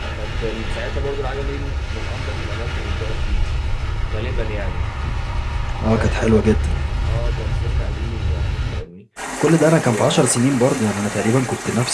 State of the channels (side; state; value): both; identical; correlation 1.00